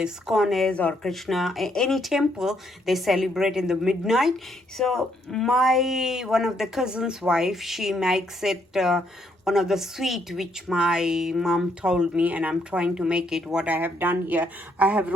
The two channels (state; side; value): normal; both; correlation 0.72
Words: is or Krishna, any temple, they celebrate in the midnight. So my one of the cousin's wife, she makes it one of the sweet which my mom told me, and I'm trying to make it. What I have done here, I have